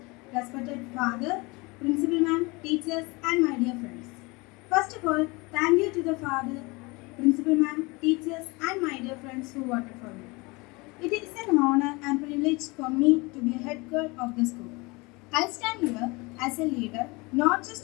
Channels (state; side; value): quieter; right; 25.6 dB